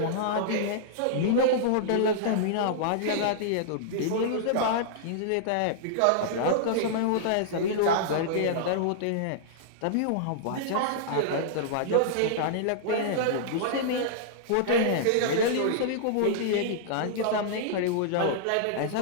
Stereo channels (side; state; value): both; different; correlation -0.02